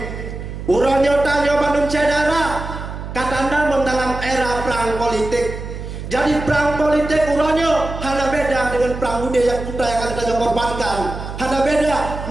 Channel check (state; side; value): noise; right; hum, 8 dB below the sound